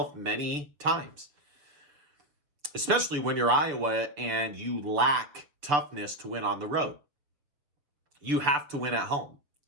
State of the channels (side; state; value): left; late; 6.9 ms